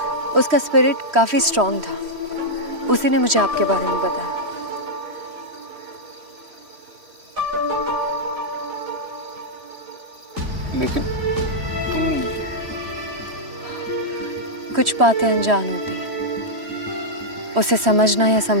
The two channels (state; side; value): late; left; 3.1 ms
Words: उसका स्पिरिट काफी स्ट्रांग था। उसी ने मुझे आपके बारे में बताया। लेकिन तुम... कुछ बातें अनजान होती हैं, उसे समझना या